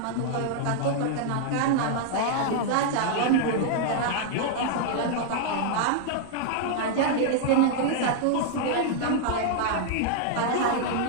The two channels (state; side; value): different; both; correlation 0.00